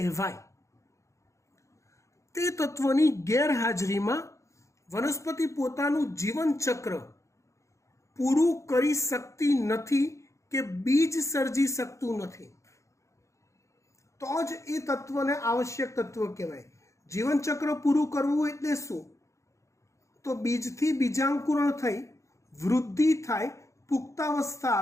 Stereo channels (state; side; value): late; right; 0.15 ms